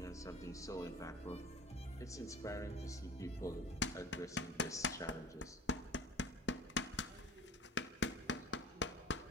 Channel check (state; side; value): normal; both; correlation 0.40